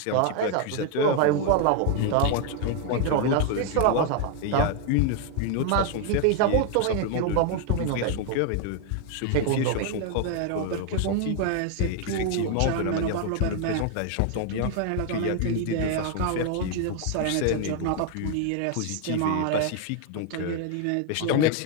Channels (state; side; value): different; both; correlation 0.00